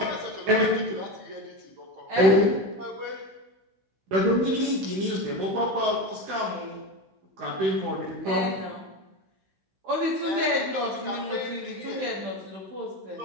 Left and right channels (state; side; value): late; left; 16 ms